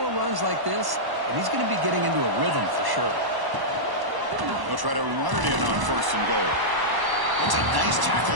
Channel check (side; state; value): left; late; 1.0 ms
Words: runs like this, and he's going to be getting into a rhythm for sure. They'll try to run it in on 1st and goal. That's a nice